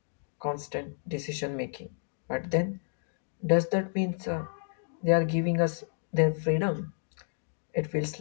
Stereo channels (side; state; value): right; silent; digital silence